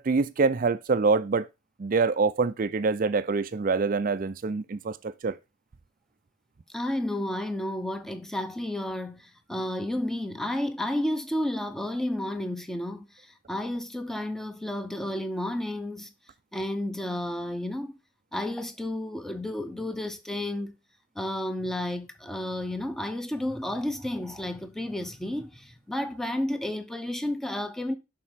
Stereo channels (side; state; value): both; normal; correlation 0.45